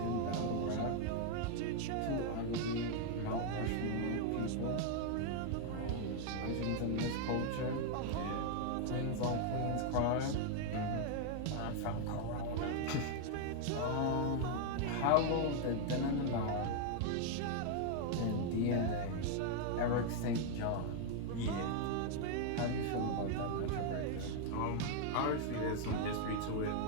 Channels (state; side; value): different; both; correlation 0.00